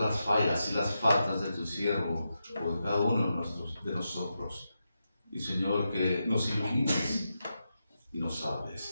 fallas y las faltas de tu siervo o de cada uno de nosotros. Y, Señor, que nos ilumines y nos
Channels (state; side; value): inverted; both; correlation -0.87